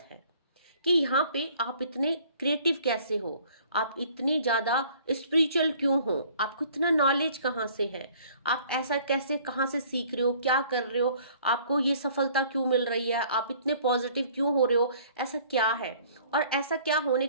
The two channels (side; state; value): both; inverted; correlation -0.55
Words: है कि यहाँ पे आप इतने क्रिएटिव कैसे हो, आप इतनी ज्यादा स्पिरिचुअल क्यों हो, आपको इतना नॉलेज कहाँ से है, आप ऐसा कैसे कहाँ से सीख रहे हो, क्या कर रहे हो, आपको ये सफलता क्यों मिल रही है, आप इतने पॉजिटिव क्यों हो रहे हो, ऐसा क्या है। और ऐसा क्या होने